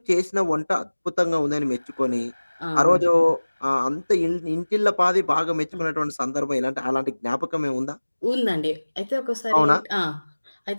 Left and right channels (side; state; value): both; inverted; correlation -1.00